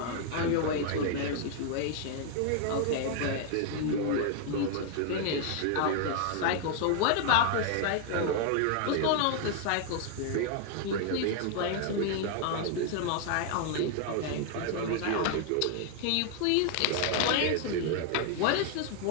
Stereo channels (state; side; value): different; both; correlation 0.00